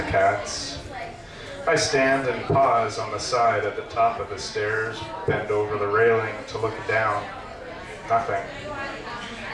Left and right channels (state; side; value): identical; both; correlation 1.00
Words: cats. I stand and pause on the side at the top of the stairs, bend over the railing to look down. Nothing.